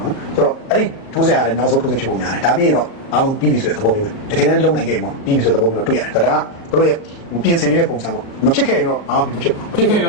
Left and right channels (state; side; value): late; right; 37 ms